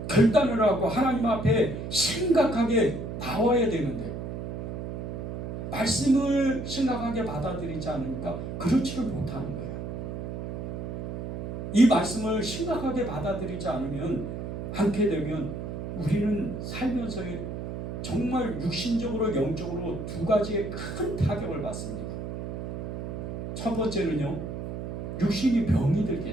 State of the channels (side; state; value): right; noise; hum, 6 dB below the sound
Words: 결단을 하고 하나님 앞에 심각하게 나와야 되는데, 말씀을 심각하게 받아들이지 않으니까 그렇지를 못하는 거예요. 이 말씀을 심각하게 받아들이지 않게 되면 우리는 살면서 정말 육신적으로 영적으로 두 가지의 큰 타격을 받습니다. 첫 번째는요, 육신이 병이